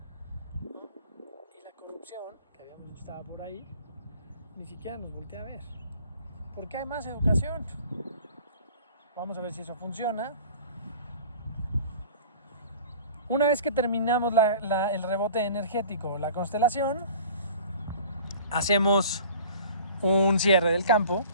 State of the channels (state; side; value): inverted; both; correlation -0.46